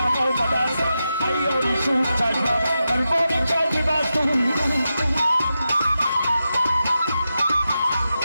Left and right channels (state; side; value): inverted; both; correlation -0.89